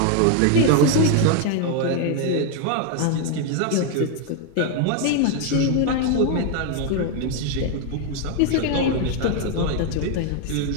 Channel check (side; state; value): both; different; correlation 0.01